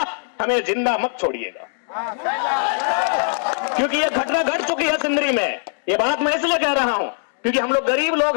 हमें जिंदा मत छोड़िएगा। क्योंकि यह घटना घट चुकी है सिंदरी में। यह बात मैं इसलिए कह रहा हूं क्योंकि हम लोग गरीब लोग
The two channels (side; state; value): right; silent; digital silence